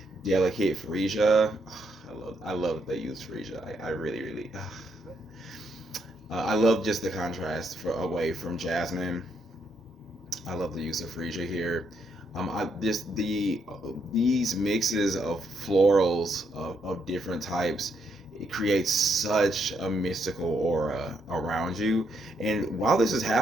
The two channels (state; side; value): normal; both; correlation 0.76